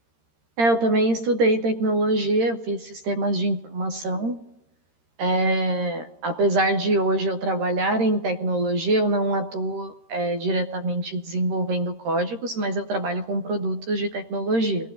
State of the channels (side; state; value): left; late; 13 ms